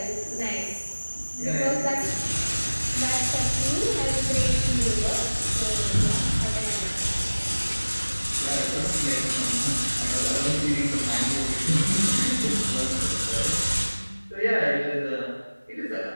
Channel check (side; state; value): both; inverted; correlation -1.00